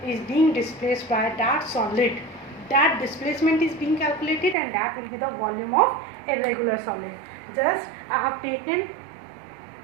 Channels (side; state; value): left; drops out; at 4.5 s